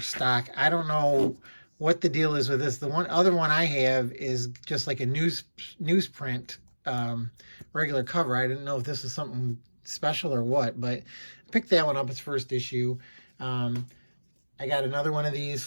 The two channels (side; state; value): both; inverted; correlation -1.00